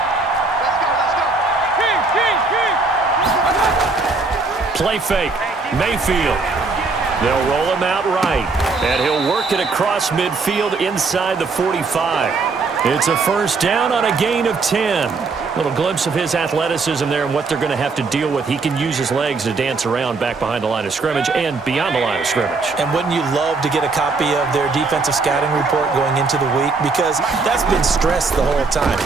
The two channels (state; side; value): quieter; left; 4.1 dB